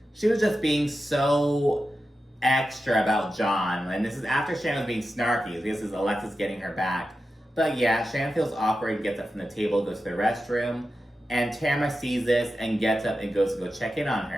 she was just being so extra about John. And this is after Shannon was being snarky. This is Alexis getting her back. But yeah, Shannon feels awkward, gets up from the table, goes to the restroom. And Tamara sees this and gets up and goes to go check in on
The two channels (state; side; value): normal; both; correlation 0.91